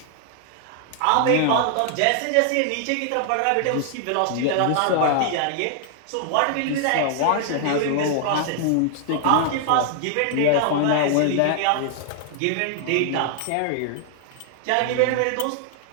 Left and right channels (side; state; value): both; different; correlation 0.00